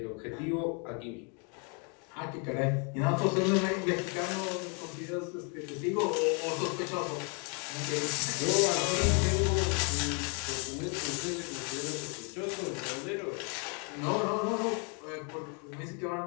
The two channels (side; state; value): right; quieter; 36.8 dB